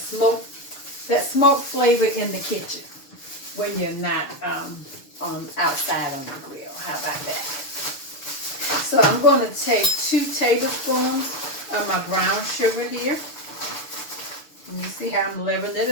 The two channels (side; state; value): right; late; 7.0 ms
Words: that smoke flavor in the kitchen when you're not outside on the grill. How about that? So I'm going to take 2 tablespoons of my brown sugar here. And you see how I'm leveling it